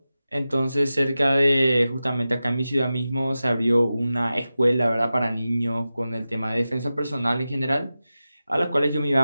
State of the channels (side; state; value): both; inverted; correlation -0.94